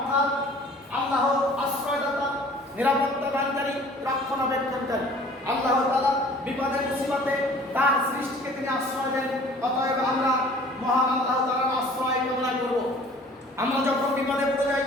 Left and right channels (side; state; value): both; normal; correlation 0.50